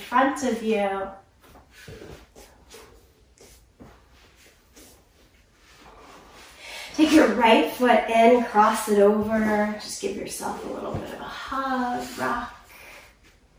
of you. Take your right foot in, cross it over. Just give yourself a little bit of a hug, rock.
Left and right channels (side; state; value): both; identical; correlation 1.00